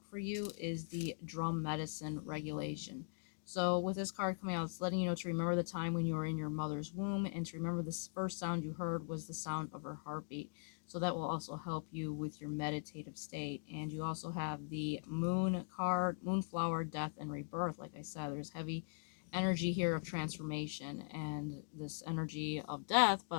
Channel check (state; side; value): silent; right; digital silence